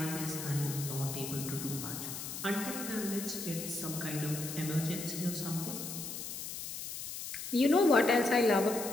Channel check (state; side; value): noise; left; hiss, 7 dB below the sound